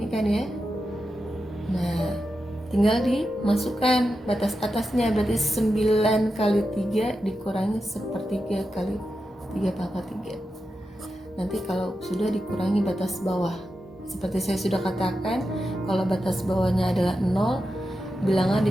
kan ya. Nah tinggal dimasukkan batas atasnya, berarti 9 kali 3 dikurangi 1/3 kali 3 pangkat 3. Nanti kalau sudah dikurangi batas bawah, seperti saya sudah katakan, kalau batas bawahnya adalah 0, bilangan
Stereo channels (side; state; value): both; normal; correlation 0.89